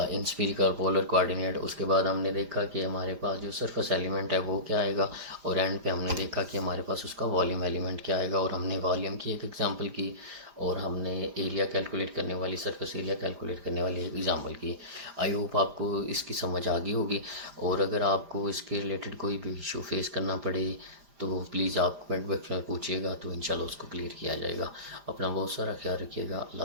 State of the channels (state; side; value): late; left; 5.0 ms